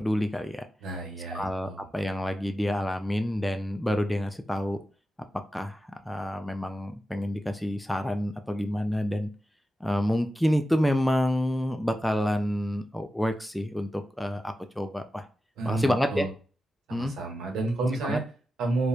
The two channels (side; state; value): both; normal; correlation 0.92